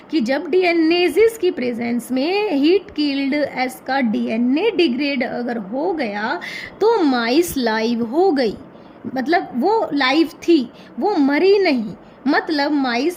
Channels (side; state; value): both; identical; correlation 1.00